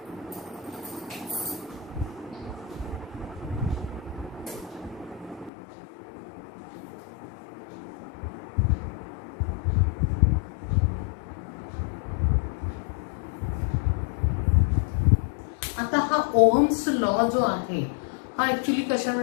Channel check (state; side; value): drops out; right; at 5.5 s